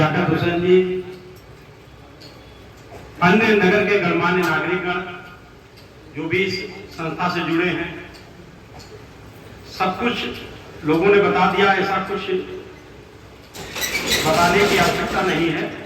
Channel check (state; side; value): identical; both; correlation 1.00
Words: हुसैन जी, अन्य नगर के गणमान्य नागरिकगण जो भी इस संस्था से जुड़े हैं, सब कुछ लोगों ने बता दिया। ऐसा कुछ बताने की आवश्यकता नहीं है।